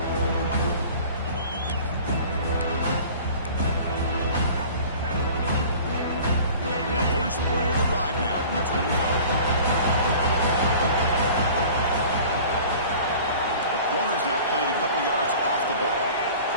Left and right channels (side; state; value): both; inverted; correlation -0.44